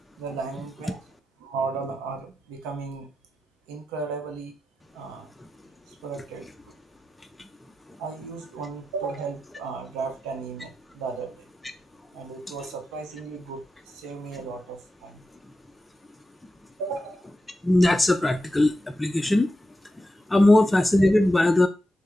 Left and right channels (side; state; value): both; normal; correlation 0.91